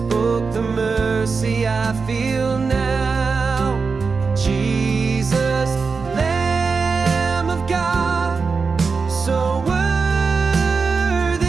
the mercy I feel now. Jesus, Lamb of God, so worthy.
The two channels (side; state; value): left; quieter; 4.8 dB